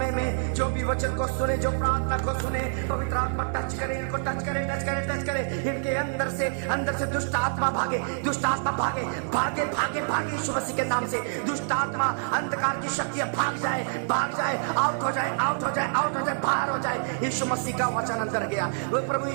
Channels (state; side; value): silent; left; 60 dB below the other